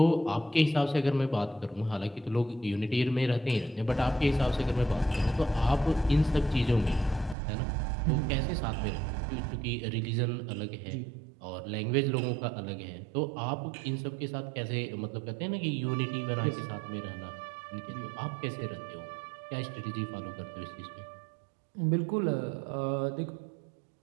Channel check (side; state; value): left; drops out; at 7.4 s